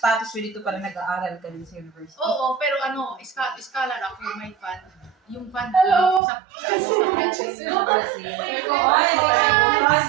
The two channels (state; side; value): drops out; left; at 6.2 s